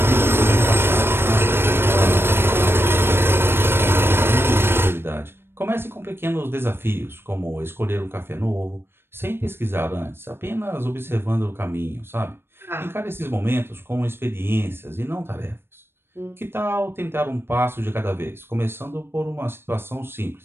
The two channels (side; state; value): left; late; 0.11 ms